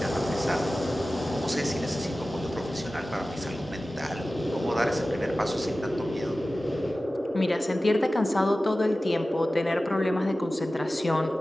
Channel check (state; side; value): normal; both; correlation 0.96